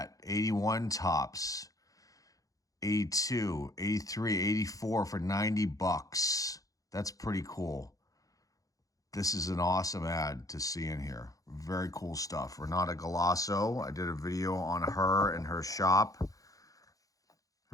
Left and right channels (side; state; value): right; late; 0.17 ms